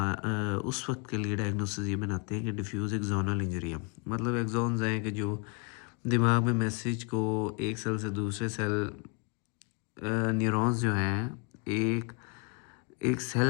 وقت کے لیے ڈائگنوسس یہ بناتے ہیں کہ ڈیفیوز ایکزونل انجری ہے، مطلب ایکزونز ہیں کہ جو دماغ میں میسیج کو ایک سیل سے دوسرے سیل، نیورونز جو ہیں، ایک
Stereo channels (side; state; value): right; quieter; 33.8 dB